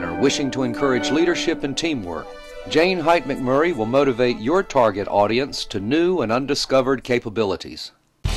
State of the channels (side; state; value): both; identical; correlation 1.00